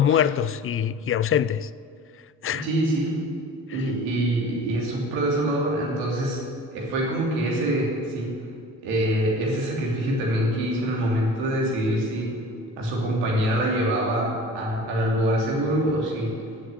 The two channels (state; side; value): normal; both; correlation 0.41